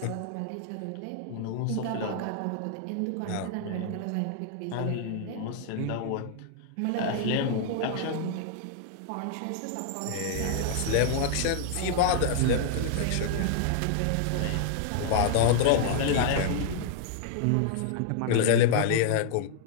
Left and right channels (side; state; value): both; different; correlation -0.01